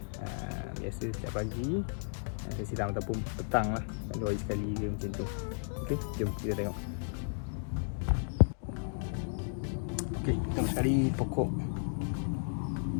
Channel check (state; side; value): silent; right; digital silence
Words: Biasa setiap pagi saya siram ataupun petang lah, 2 hari sekali dia macam tu. Okey, jom kita tengok. Okey, pertama sekali pokok